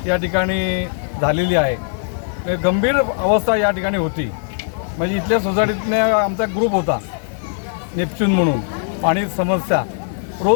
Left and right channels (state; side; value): silent; right; digital silence